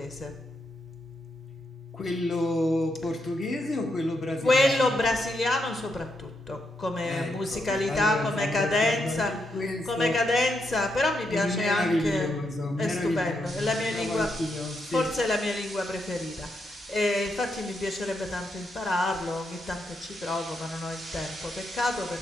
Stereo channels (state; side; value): normal; both; correlation 0.81